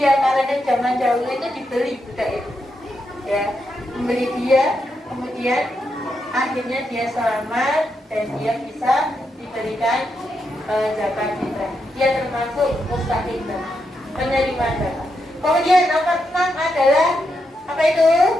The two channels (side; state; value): both; normal; correlation 0.83